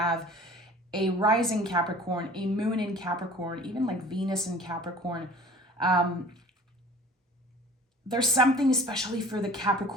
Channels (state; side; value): normal; both; correlation 0.46